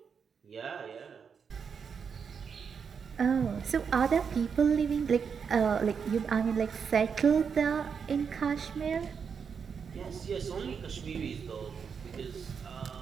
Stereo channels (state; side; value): quieter; left; 6.4 dB